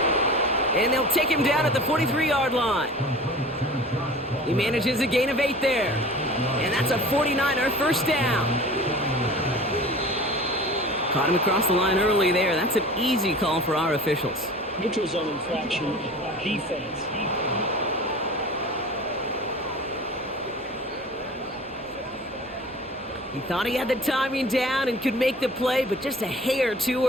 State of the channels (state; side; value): normal; both; correlation 0.40